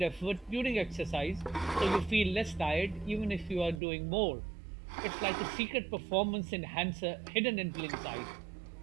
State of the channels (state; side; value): drops out; left; at 3.8 s